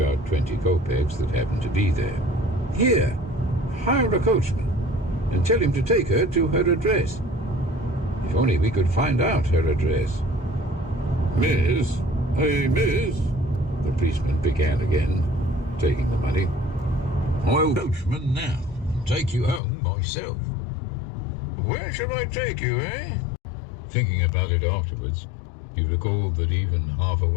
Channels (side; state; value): right; drops out; at 19.6 s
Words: 20 kopecks that happened to be there. "Here, hire a coachman and tell him to take her to her address. If only we could find out her address." "Miss, hey, miss," the policeman began again, taking the money. "I'll coachman now and take you home myself." "Where shall I take you, eh?" Thinking about it afterwards, he recalled that even half